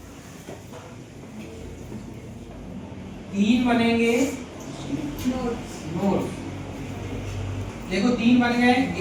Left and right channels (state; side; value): identical; both; correlation 1.00